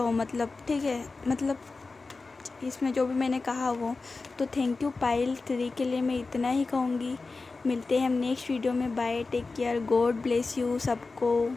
मतलब ठीक है, मतलब इसमें जो भी मैंने कहा वो। तो थैंक यू पायल 3 के लिए मैं इतना ही कहूँगी। मिलते हैं हम नेक्स्ट वीडियो में। Bye, take care, God bless you सबको।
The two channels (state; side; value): quieter; right; 3.9 dB